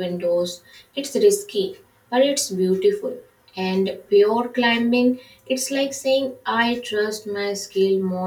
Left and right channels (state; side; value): identical; both; correlation 1.00